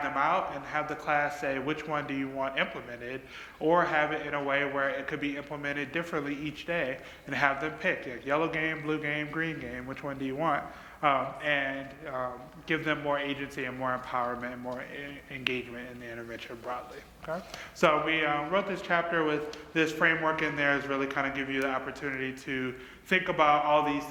out and have the class say which one do you want implemented, or have it in a way where it could be implemented differently each day and have them pick, like yellow game, blue game, green game, which one do you want? And give them more agency and more empowerment and more engagement in the intervention broadly. Okay? So we wrote this chapter with this framework in there is really kind of give you the opportunity to think about all these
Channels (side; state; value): both; identical; correlation 1.00